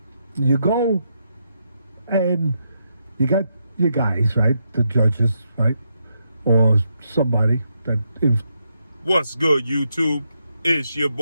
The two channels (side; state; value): both; inverted; correlation -0.81